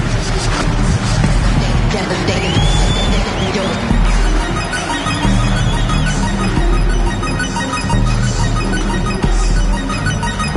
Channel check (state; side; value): identical; both; correlation 1.00